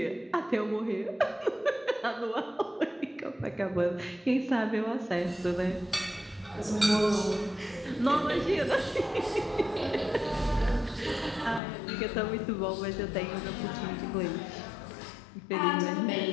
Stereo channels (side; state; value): right; drops out; at 11.6 s